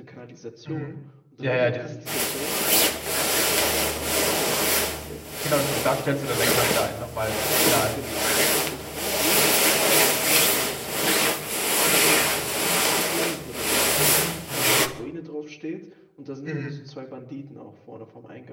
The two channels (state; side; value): identical; both; correlation 1.00